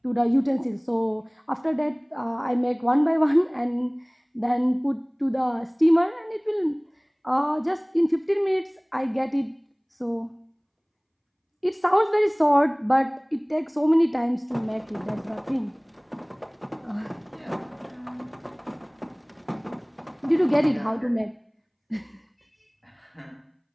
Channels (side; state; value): both; identical; correlation 1.00